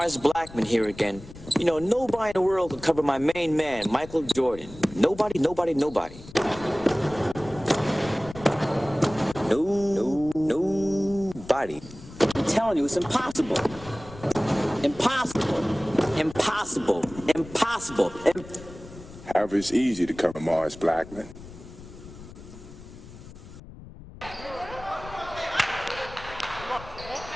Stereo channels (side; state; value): left; noise; rumble, 17 dB below the sound